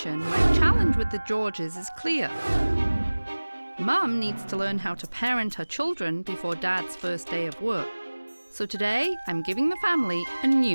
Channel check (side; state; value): both; inverted; correlation -1.00